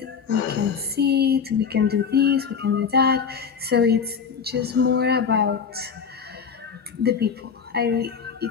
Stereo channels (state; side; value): quieter; right; 6.4 dB